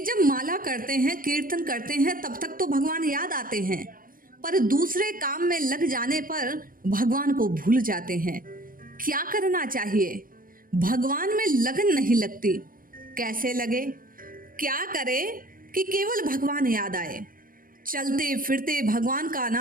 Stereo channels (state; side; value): late; left; 0.41 ms